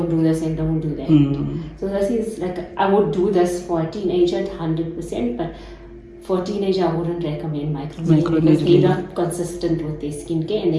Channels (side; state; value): both; identical; correlation 1.00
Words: do this and don't do that. So this is like, I would do this for a teenager 100%, but for a teenager, I wouldn't recommend microneedling because they're not consistent with their skincare, and